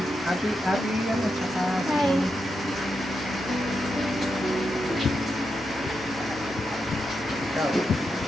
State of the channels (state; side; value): normal; both; correlation 0.85